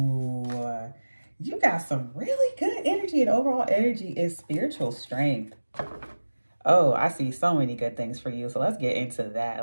You got some really good energy, and overall energy is spiritual strength. Oh, I see so many good things for you. So let's get into that.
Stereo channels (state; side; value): inverted; both; correlation -1.00